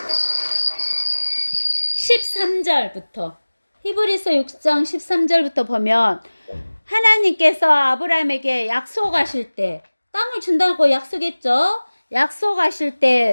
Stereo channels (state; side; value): inverted; both; correlation -1.00